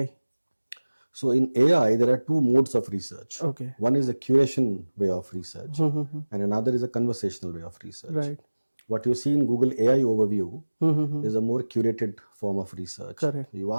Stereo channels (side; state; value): both; inverted; correlation -1.00